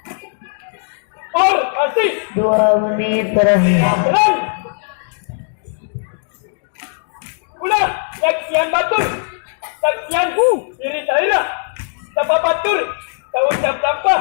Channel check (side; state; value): right; silent; digital silence